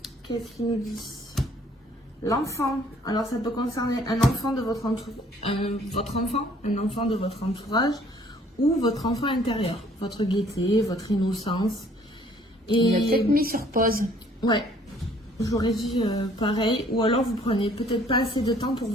Qu'est-ce qu'il nous dit? L'enfant. Alors, ça peut concerner un enfant de votre entourage, un enfant de votre entourage ou votre enfant intérieur. Votre gaieté, votre innocence. Et... Il a peut-être mis sur pause. Ouais. J'aurais dit pareil. Ou alors, vous prenez peut-être pas assez de temps pour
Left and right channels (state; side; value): normal; both; correlation 0.60